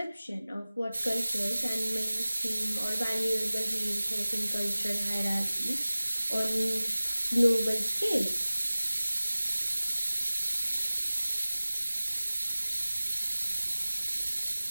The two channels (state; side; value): inverted; both; correlation -0.97